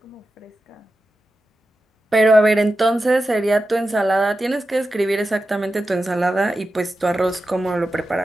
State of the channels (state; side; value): normal; both; correlation 0.91